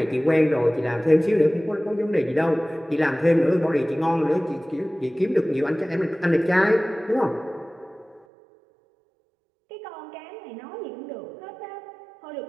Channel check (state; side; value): drops out; left; at 8.2 s